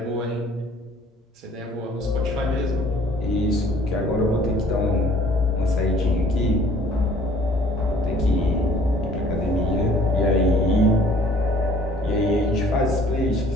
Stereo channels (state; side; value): normal; both; correlation 0.55